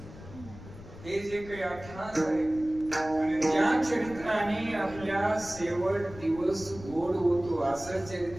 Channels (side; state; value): left; noise; rumble, 16 dB below the sound